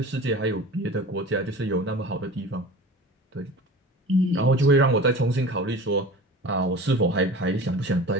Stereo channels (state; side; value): normal; both; correlation 0.37